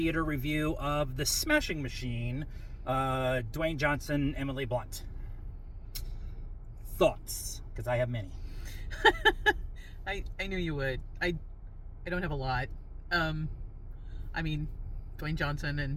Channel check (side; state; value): both; identical; correlation 1.00